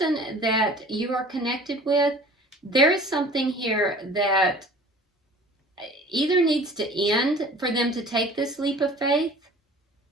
that you are connected with, there is something here that either needs to end for them to take this leap of faith.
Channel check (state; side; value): normal; both; correlation 0.46